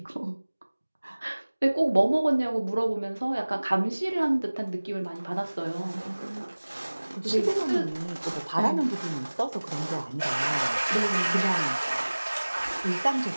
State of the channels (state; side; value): inverted; both; correlation -1.00